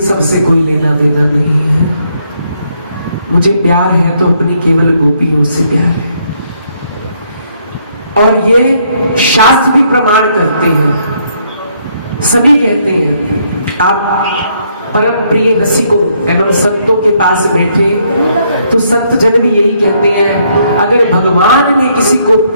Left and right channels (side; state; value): both; inverted; correlation -0.71